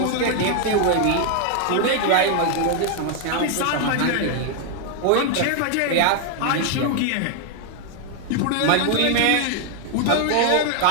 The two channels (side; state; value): both; different; correlation 0.00